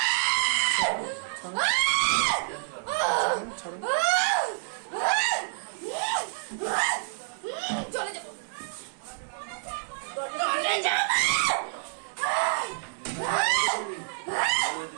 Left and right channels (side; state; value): left; silent; digital silence